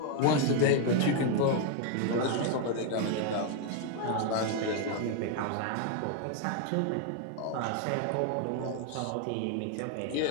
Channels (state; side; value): different; both; correlation 0.00